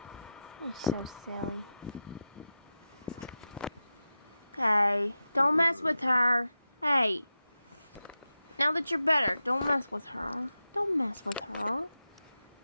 You're so silly. Hey, don't mess with her. Hey. Now that you're better, don't mess with her. Don't mess with her.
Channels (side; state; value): both; inverted; correlation -0.91